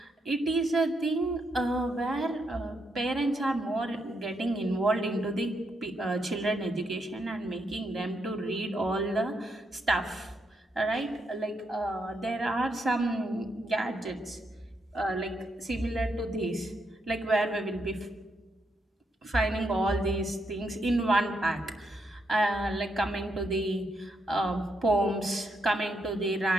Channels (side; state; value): both; normal; correlation 0.79